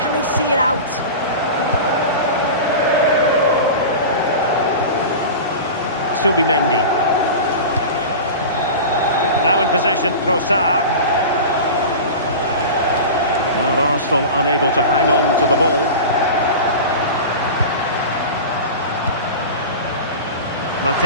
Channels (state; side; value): inverted; both; correlation -0.30